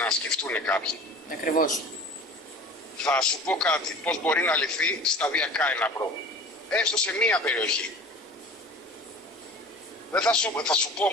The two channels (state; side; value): normal; both; correlation 0.41